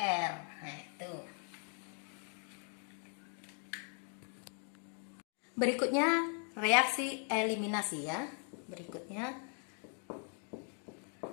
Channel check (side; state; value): right; quieter; 39.2 dB